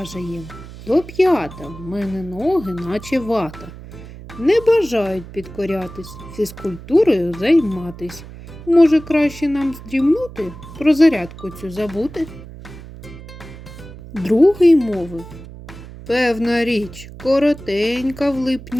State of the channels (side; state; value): right; noise; hum, 15 dB below the sound